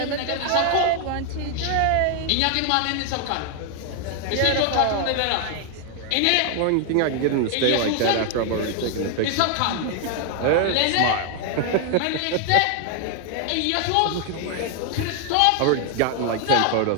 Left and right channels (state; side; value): different; both; correlation 0.00